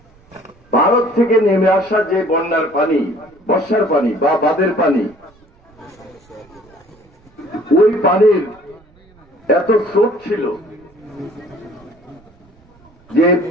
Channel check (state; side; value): noise; right; rumble, 30 dB below the sound